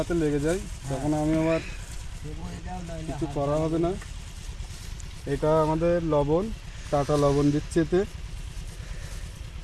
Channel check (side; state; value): both; identical; correlation 1.00